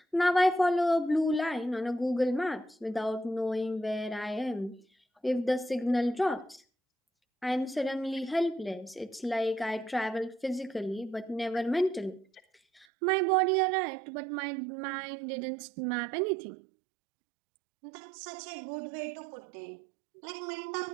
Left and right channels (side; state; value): left; drops out; at 12.9 s